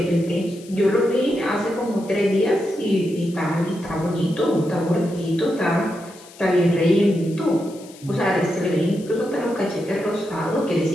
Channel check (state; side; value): noise; left; hiss, 22 dB below the sound